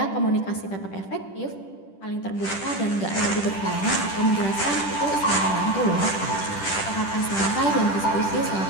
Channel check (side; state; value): right; late; 10 ms